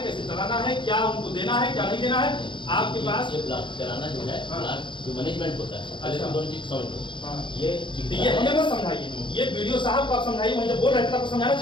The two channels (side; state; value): right; late; 0.23 ms